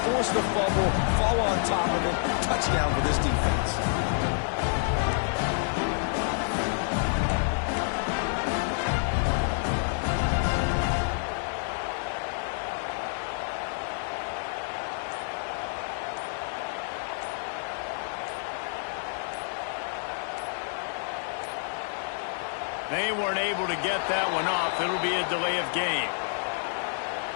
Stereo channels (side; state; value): right; silent; digital silence